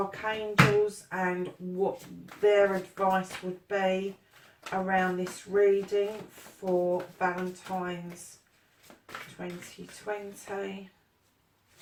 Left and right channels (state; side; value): identical; both; correlation 1.00